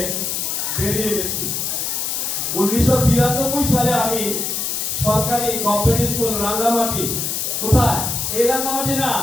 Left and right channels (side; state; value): left; noise; hiss, 1 dB below the sound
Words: বেরিয়ে গেছি। 1992 সালে আমি সরকারি গভর্নমেন্ট স্কুল রাঙ্গামাটি, কোথায়? এই রাঙ্গামাটি না,